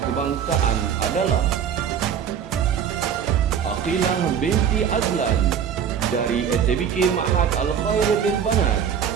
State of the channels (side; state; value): left; quieter; 8.1 dB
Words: kebangsaan adalah Aqilah binti Azlan dari SABK Ma'had Al-Khair Lil Banat